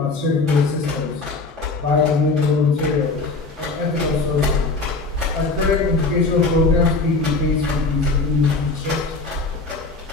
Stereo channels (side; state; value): right; quieter; 3.7 dB